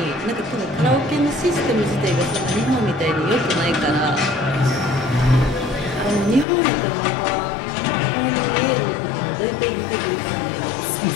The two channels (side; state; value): right; drops out; at 6.5 s